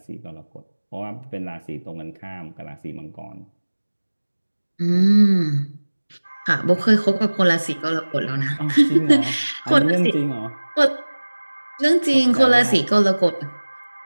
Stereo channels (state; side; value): inverted; both; correlation -1.00